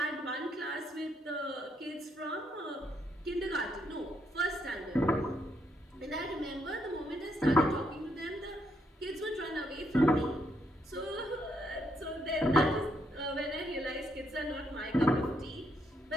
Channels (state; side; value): normal; both; correlation 0.75